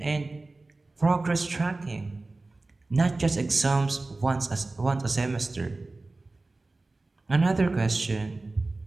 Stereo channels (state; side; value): quieter; left; 3.2 dB